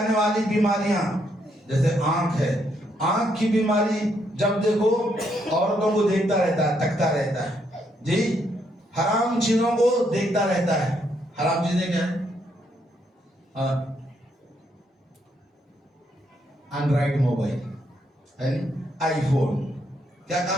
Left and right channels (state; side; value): normal; both; correlation 0.75